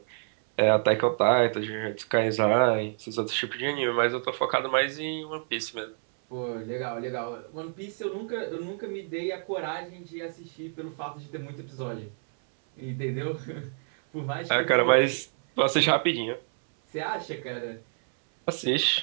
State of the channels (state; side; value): silent; left; 59 dB below the other